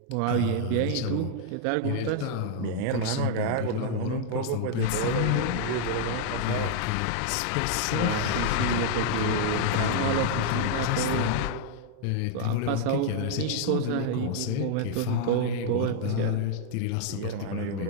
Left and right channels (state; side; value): different; both; correlation -0.01